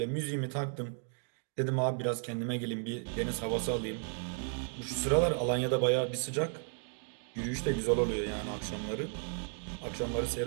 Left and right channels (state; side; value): silent; left; 55 dB below the other